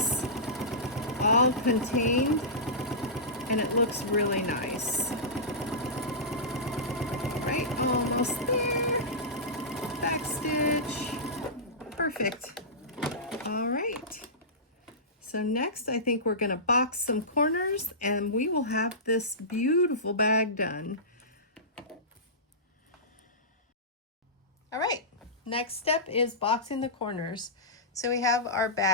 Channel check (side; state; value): both; normal; correlation -0.18